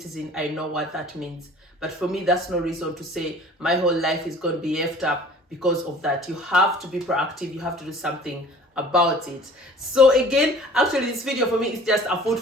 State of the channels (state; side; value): normal; both; correlation 0.48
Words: I know what that means. But for me, that's no reason to say my whole life is going to be effed up because of that. You have to be proactive. You have to do something about it. So again, actually, this video for me is just a food